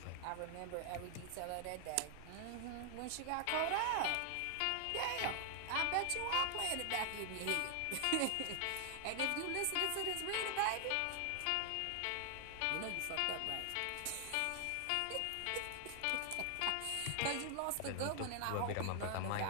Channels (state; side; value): different; both; correlation 0.00